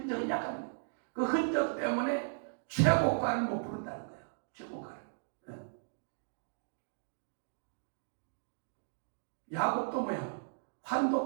약간 그 흔적 때문에 최고가를 못 부른다는 거예요. 최고가를. 네. 야곱도 뭐야?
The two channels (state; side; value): silent; left; digital silence